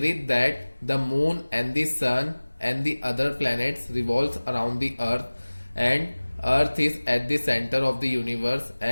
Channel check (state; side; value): inverted; both; correlation -1.00